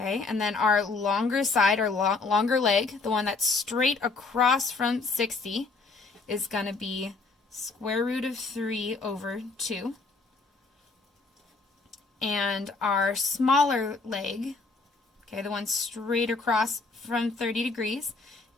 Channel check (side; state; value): right; quieter; 4.0 dB